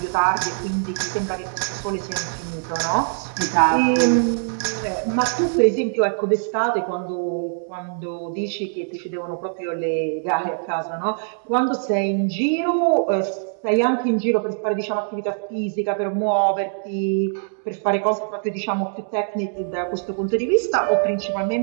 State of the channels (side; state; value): left; silent; digital silence